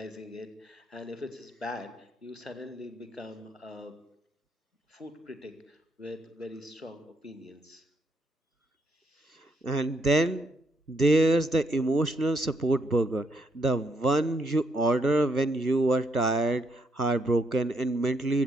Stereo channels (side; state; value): both; normal; correlation 0.74